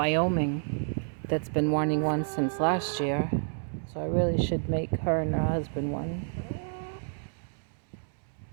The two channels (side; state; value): left; silent; digital silence